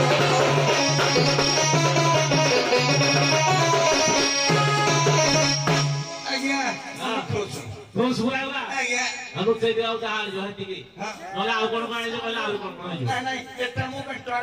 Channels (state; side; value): identical; both; correlation 1.00